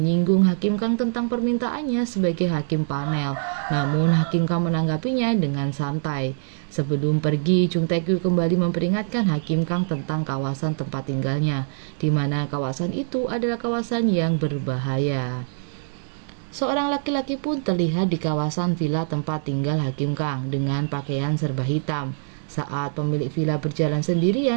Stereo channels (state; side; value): silent; left; digital silence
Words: Hakim Kang tentang permintaannya sebagai hakim panel. Namun Hakim Kang menanggapinya dengan santai. Sebelum pergi, Jung Taek-gyu kembali memperingatkan Hakim Kang tentang kawasan tempat tinggalnya, di mana kawasan itu adalah kawasan yang berbahaya. Seorang laki-laki pun terlihat di kawasan villa tempat tinggal Hakim Kang dengan pakaian serba hitam. Saat pemilik villa berjalan